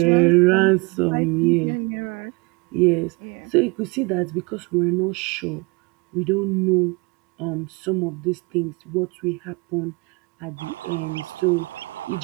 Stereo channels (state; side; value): quieter; left; 27.6 dB